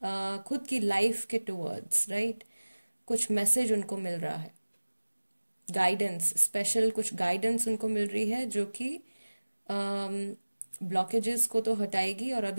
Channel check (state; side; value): inverted; both; correlation -1.00